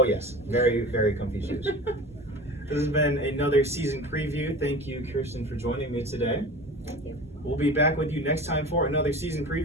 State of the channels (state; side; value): normal; both; correlation 0.36